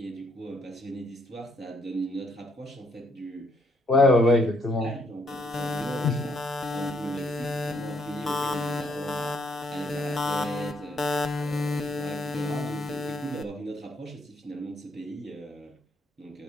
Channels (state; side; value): normal; both; correlation 0.71